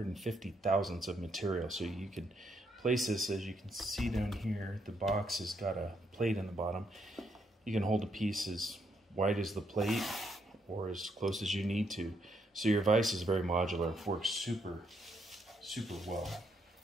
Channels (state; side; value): normal; both; correlation 0.75